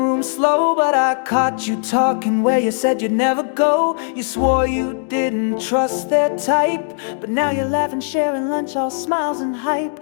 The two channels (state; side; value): silent; right; digital silence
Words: slow, but I caught you talking where you said you'd never go. You swore you didn't trust their type, but now you're laughing, sharing lunch, all smiles and hype.